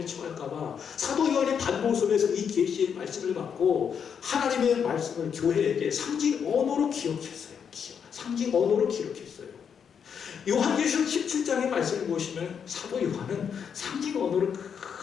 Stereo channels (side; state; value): right; quieter; 7.3 dB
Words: 처할까봐 사도 요한이 반복서면서 이 계시의 말씀을 받고 하나님의 말씀을 교회에게 상징 언어로 기록했어요. 상징 언어로 기록했어요. 요한계시록 17장의 말씀을 보시면 사도 요한은 상징 언어로